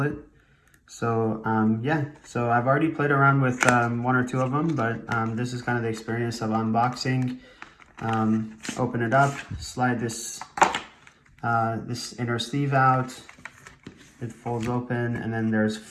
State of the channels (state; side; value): identical; both; correlation 1.00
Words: it. So so I've already played around with one or two of them, but this is kind of the experience of unboxing. Open it up, slide this inner sleeve out, it folds open, and then there's